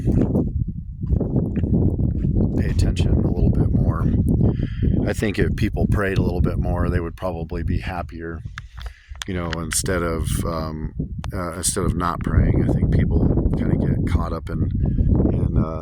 pay attention a little bit more. I think if people prayed a little bit more, they would probably be happier. You know, instead of not praying, I think people kind of get caught up in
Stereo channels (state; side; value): identical; both; correlation 1.00